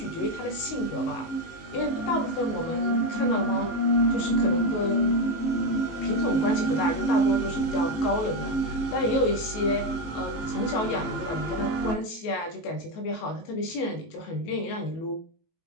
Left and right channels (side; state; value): right; late; 18 ms